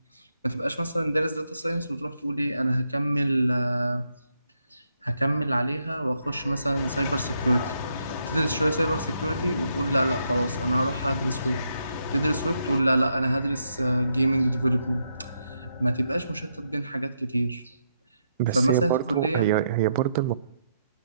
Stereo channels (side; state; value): both; inverted; correlation -0.79